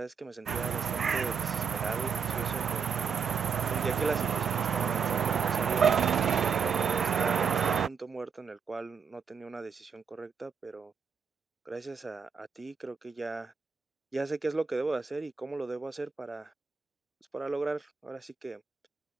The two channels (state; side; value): quieter; left; 6.1 dB